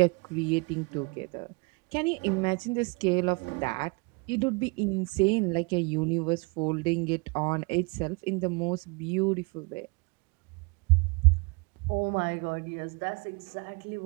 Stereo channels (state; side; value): quieter; left; 29.2 dB